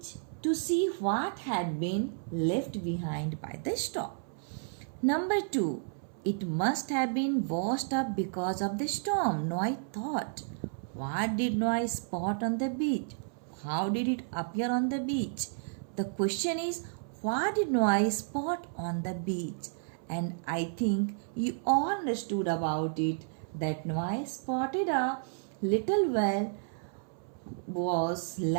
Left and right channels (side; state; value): left; silent; 57 dB below the other